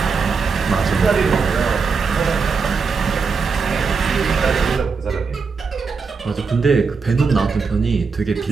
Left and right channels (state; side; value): quieter; left; 5.1 dB